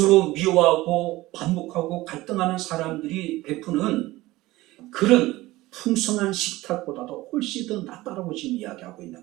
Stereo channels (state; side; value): quieter; left; 18.5 dB